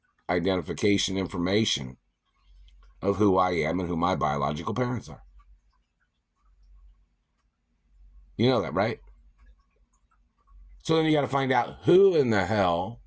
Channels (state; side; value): identical; both; correlation 1.00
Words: identification information of who I am and who my biological parents are. You know that, right? So then you got to find out who in the hell